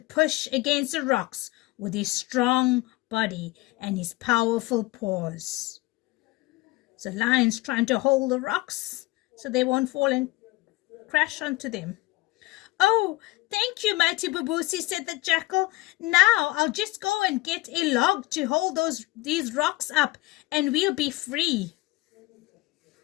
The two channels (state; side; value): quieter; right; 20.0 dB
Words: against the rocks with his strong body and his powerful paws. So Lion's trying to hold the rocks so they won't fall and crash onto them. "Oh, thank you, mighty Babusi," said the Jackal. "Now I'll just go and get a log to hold these rocks up and we'll be free."